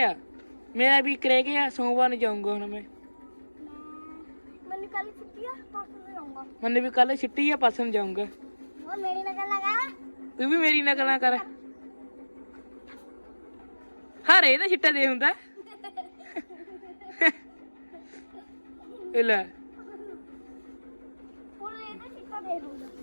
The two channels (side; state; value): both; inverted; correlation -1.00